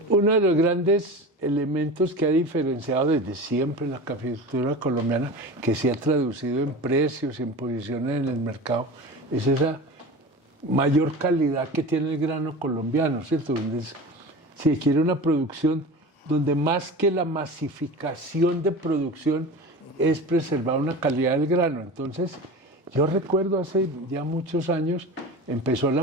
Uno de los grandes elementos que ha diferenciado desde siempre la caficultura colombiana, que se ha traducido en precios y en posiciones en el mercado, es esa mayor calidad que tiene el grano colombiano, ¿cierto? Se quiere una producción donde más que la masificación de producción es preservar una calidad del grano. Entonces, yo recuerdo hace ya muchos años, empezó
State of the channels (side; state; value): both; normal; correlation 0.32